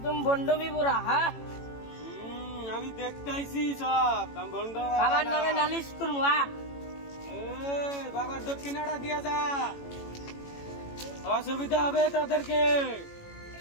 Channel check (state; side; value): late; right; 18 ms